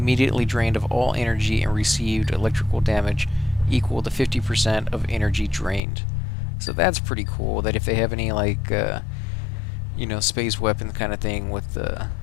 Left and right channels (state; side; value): drops out; right; at 5.8 s